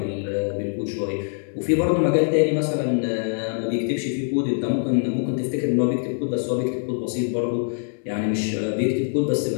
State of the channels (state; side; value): silent; right; 60 dB below the other